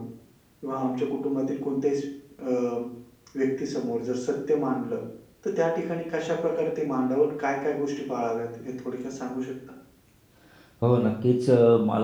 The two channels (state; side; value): identical; both; correlation 1.00